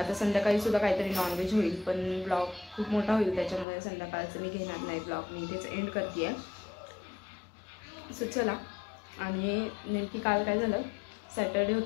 संध्याकाळी सुद्धा काहीतरी नॉनव्हेज होईल, पण ब्लॉग खूप मोठा होईल त्याच्यामुळे संध्याकाळचं मी घेणार नाही ब्लॉग. मी इथेच एंड करते आहे. सो चला. आणि नेमकी काल काय झालं, सॅटर्डे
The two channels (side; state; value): right; drops out; at 3.7 s